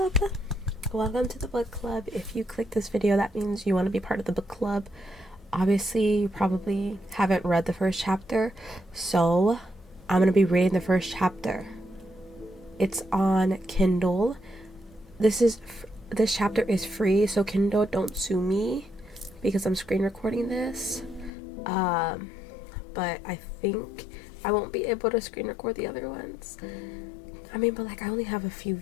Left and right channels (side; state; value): right; drops out; at 21.3 s